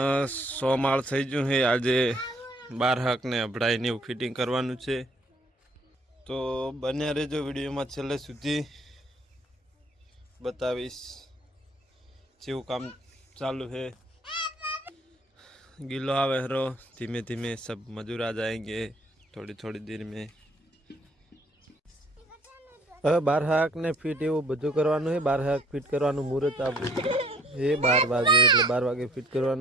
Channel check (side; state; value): both; normal; correlation 0.60